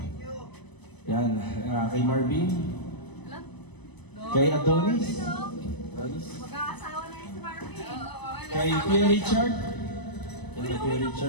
Yan. Kay Marvin. Kay Adonis. Mag-aasawa na yun si Marvin. Kay Kuya Richard. Kay Kuya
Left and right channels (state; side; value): late; right; 0.99 ms